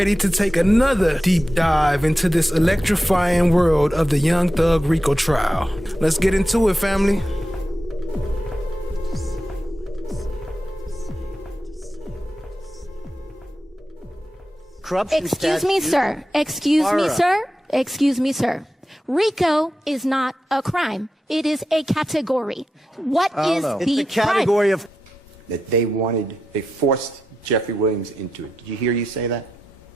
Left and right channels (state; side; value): normal; both; correlation 0.89